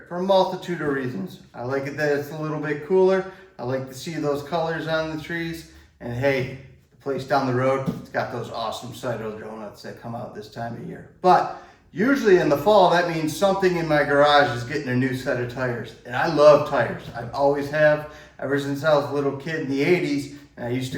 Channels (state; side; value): identical; both; correlation 1.00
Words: for a multitude of reasons. I like it that it's a little bit cooler. I like to see those colors on the trees. And hey, the place down the road, it's got those awesome Sidewall donuts that come out this time of year. But usually in the fall, that means something in my garage is getting a new set of tires. And I love tires. I always have, ever since I was a little kid in the 80s. And I used